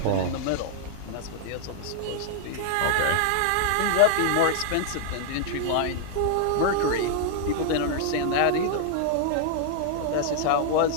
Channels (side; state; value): both; different; correlation -0.01